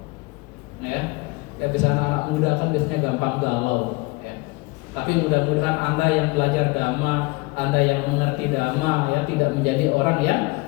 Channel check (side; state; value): right; quieter; 25.1 dB